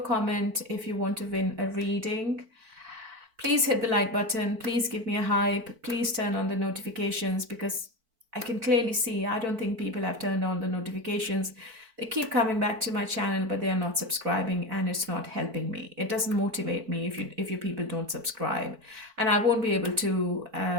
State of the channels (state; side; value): late; left; 4.5 ms